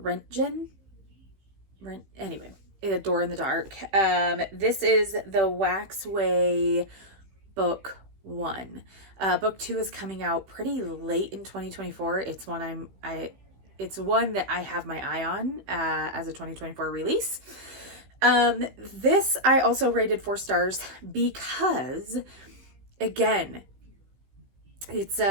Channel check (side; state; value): left; late; 16 ms